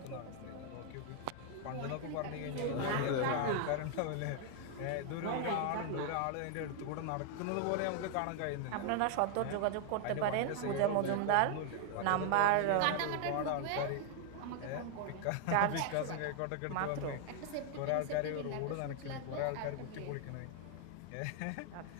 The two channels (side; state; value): both; different; correlation 0.00